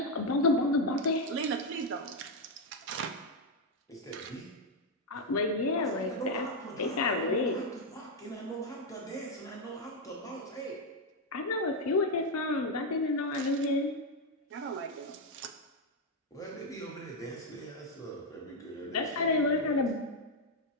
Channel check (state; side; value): normal; both; correlation 0.03